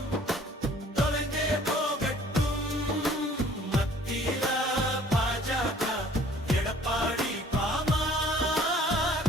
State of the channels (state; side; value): normal; both; correlation 0.54